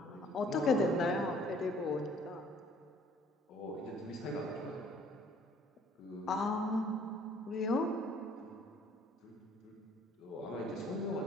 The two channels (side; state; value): both; normal; correlation 0.58